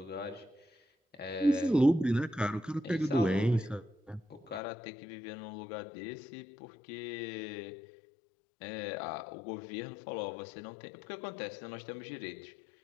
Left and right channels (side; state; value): right; drops out; at 4.6 s